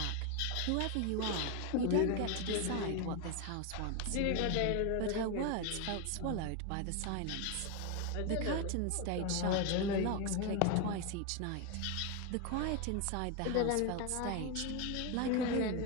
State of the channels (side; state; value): both; different; correlation 0.02